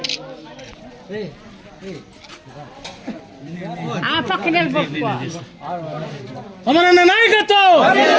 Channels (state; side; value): identical; both; correlation 1.00